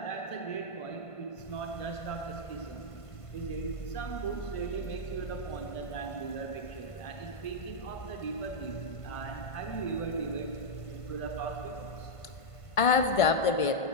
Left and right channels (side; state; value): right; late; 1.5 ms